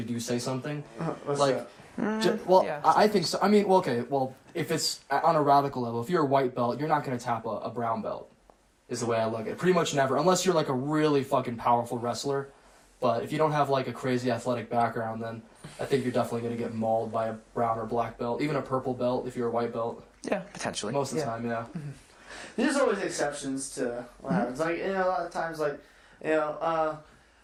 do say something. I think so. I mean, if it's on a radical level, if you're a white belt, you're not going to tap a brown belt. Is the way I look at it. Pretty much never, unless you're like a really fucking powerful wrestler. But if you don't have like a crazy athletic background, then I think you're definitely going to get mauled by a brown or black belt, even a purple belt if you're a white belt. Yeah, potentially. Most of the time, yeah. There's always exceptions to what happens. Like a lot of times, like the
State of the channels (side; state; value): both; identical; correlation 1.00